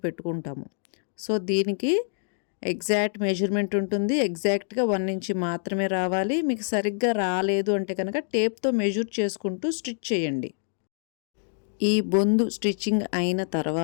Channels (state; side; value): silent; right; digital silence